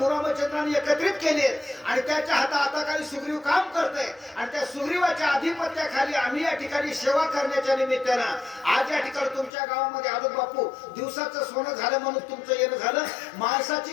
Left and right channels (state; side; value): drops out; right; at 9.5 s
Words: रामचंद्रांनी एकत्रित केले आणि त्याच्या हाताखाली सुग्रीव काम करतोय आणि त्या सुग्रीवाच्या आधिपत्याखाली आम्ही या ठिकाणी सेवा करण्याच्या निमित्तानं आज या ठिकाणी तुमच्या गावामध्ये आलो. बापू, दिवसाचं सोनं झालं म्हणून तुमचं येणं झालं.